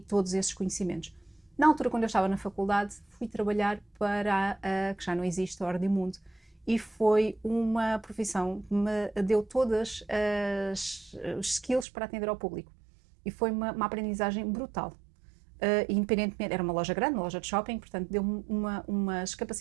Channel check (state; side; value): drops out; left; at 11.9 s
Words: todos esses conhecimentos. Na altura, quando eu estava na faculdade, fui trabalhar para que já não existe, a Ordem Mundo, e foi uma profissão que me deu todas os skills para atender ao público. E foi uma aprendizagem brutal. Independentemente, era uma loja grande, uma loja de shopping, portanto deu-me umas